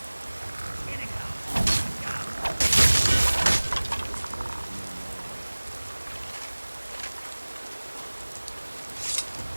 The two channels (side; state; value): both; inverted; correlation -1.00